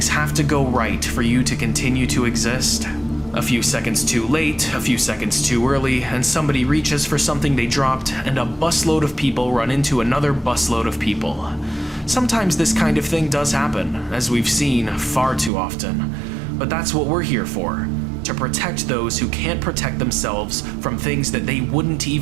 have to go right for you to continue to exist? A few seconds too late, a few seconds too early, and somebody reaches for something they dropped, and a busload of people run into another busload of people. Sometimes this kind of thing does happen, as we've seen far too often. But that's what we're here for, to protect those who can't protect themselves from things that they wouldn't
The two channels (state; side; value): drops out; left; at 15.5 s